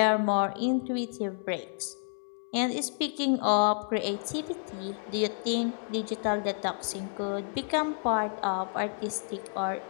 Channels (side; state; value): right; silent; 56 dB below the other